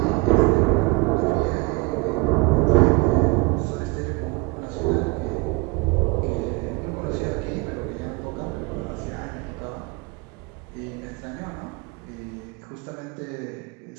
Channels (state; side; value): quieter; left; 26.7 dB